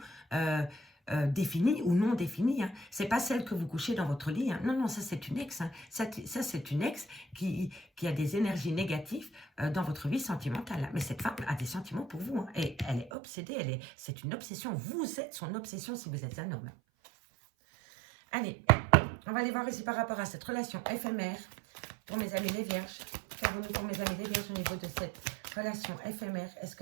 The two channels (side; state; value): left; drops out; at 13.1 s